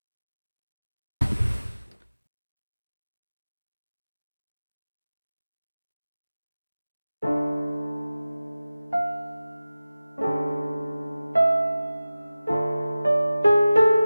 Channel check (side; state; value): both; inverted; correlation -0.96